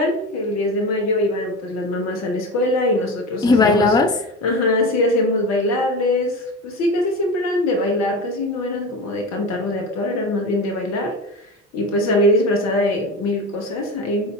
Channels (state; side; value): normal; both; correlation 0.26